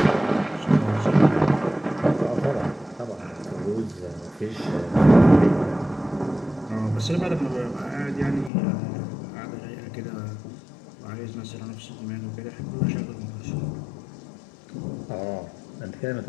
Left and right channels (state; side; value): drops out; right; at 8.5 s